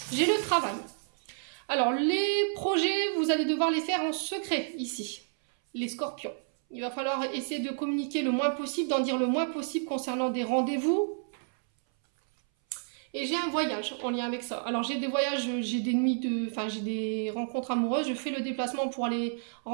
J'ai le travail. Alors, les projets, vous allez devoir les faire en secret, ici, les scorpions. Il va falloir essayer de communiquer le moins possible, d'en dire le moins possible concernant des rendez-vous. Et j'ai un voyage en lien avec ça. Alors, j'ai des voyages, j'ai des nuits j'ai des rencontres amoureuses. Je fais le déplacement pour aller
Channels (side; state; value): left; silent; 58 dB below the other